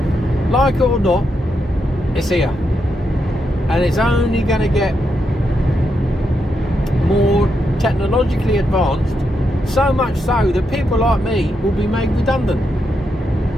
like it or not, it's here. And it's only going to get more technologically advanced, so much so that people like me will be made redundant.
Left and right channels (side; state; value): both; normal; correlation 0.83